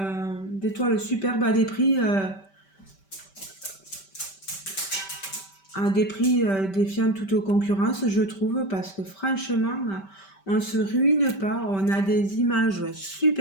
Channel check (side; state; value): right; late; 5.2 ms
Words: des toiles superbes à des prix défiant toute concurrence, je trouve, parce que franchement, on se ruine pas. On a des images